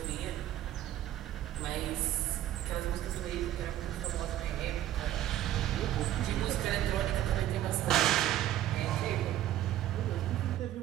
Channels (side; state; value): left; quieter; 12.8 dB